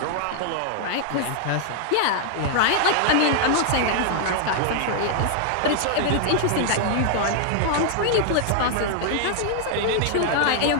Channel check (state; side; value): different; both; correlation -0.01